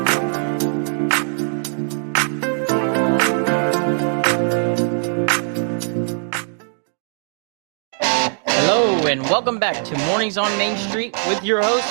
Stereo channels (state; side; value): silent; left; 65 dB below the other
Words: And welcome back to Mornings on Main Street with your host,